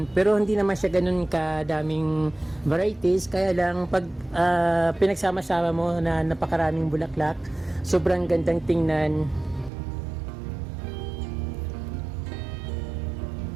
pero hindi naman siya ganun kadaming varieties, kaya lang pag pinagsama-sama mo na napakaraming bulaklak, sobrang gandang tingnan.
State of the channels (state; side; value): drops out; left; at 9.7 s